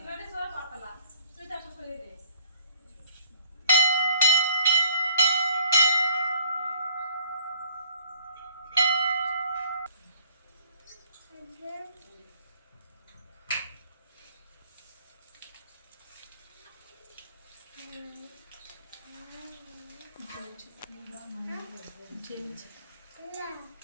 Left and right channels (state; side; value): inverted; both; correlation -0.58